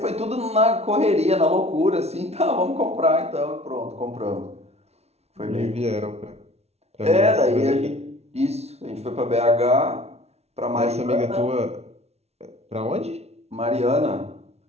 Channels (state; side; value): late; left; 0.31 ms